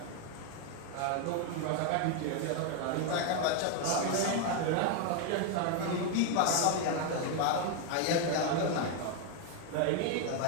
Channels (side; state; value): both; different; correlation 0.01